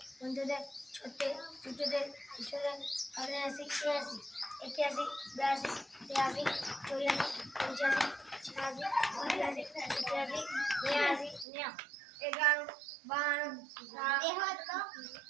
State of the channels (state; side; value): drops out; left; at 11.5 s